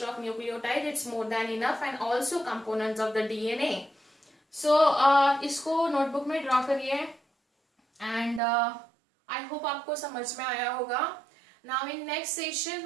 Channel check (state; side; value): drops out; left; at 8.4 s